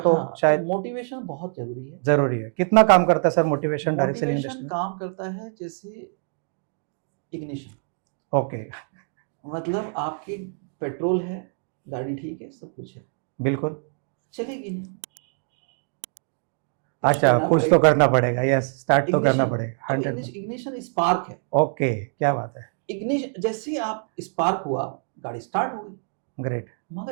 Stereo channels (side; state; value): left; silent; 56 dB below the other